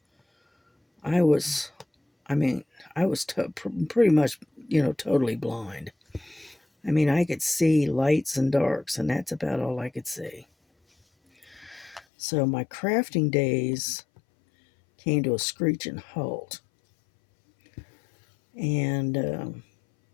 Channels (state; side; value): drops out; right; at 12.1 s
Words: I was pretty much, totally blind. I mean, I could see lights and darks, and that's about all I could see. So my crafting days came to a screeching halt. And